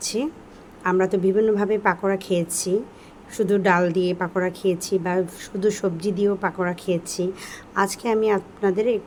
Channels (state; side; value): identical; both; correlation 1.00